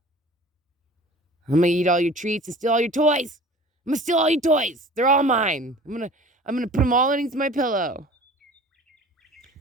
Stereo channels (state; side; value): normal; both; correlation 0.43